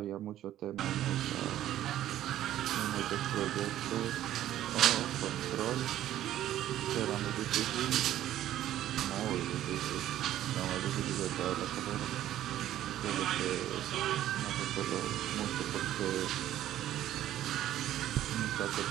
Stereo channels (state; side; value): quieter; left; 12.7 dB